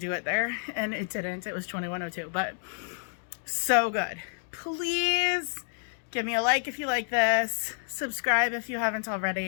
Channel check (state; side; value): silent; right; digital silence